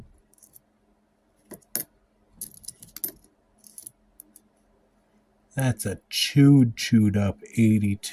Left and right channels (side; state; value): both; identical; correlation 1.00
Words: That's a chewed up